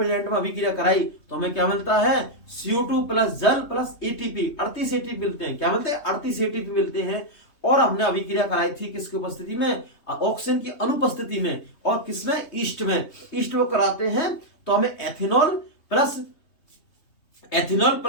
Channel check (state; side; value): late; right; 3.2 ms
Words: में अभिक्रिया कराई तो हमें क्या मिलता है, CO2 प्लस जल प्लस ATP, 38 ATP मिलते हैं। क्या मिलते हैं, 38 ATP मिलते हैं। और हमने अभिक्रिया कराई थी किसकी उपस्थिति में, ऑक्सीजन की अनुपस्थिति में, और किसमें, ईस्ट में कराते हैं तो हमें एथेनॉल